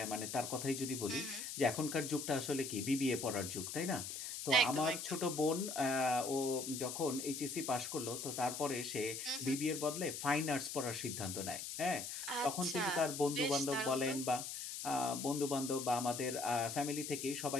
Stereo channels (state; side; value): noise; left; hiss, 6 dB below the sound